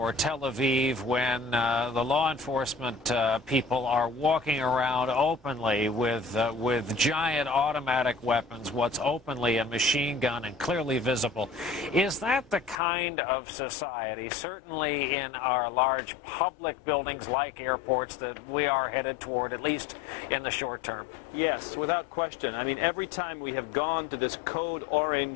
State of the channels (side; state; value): right; drops out; at 12.8 s